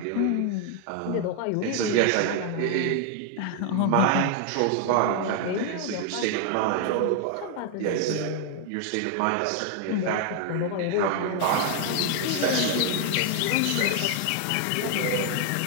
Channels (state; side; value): different; both; correlation 0.00